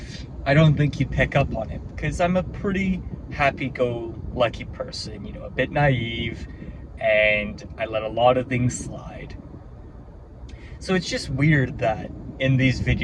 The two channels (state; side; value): identical; both; correlation 1.00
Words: I don't think you'd pick up on it because I'm a pretty happy-go-lucky person, a bit naive, and I let a lot of things slide. So it's just weird that in these